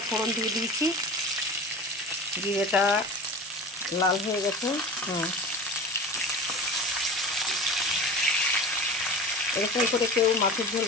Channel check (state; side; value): normal; both; correlation 0.34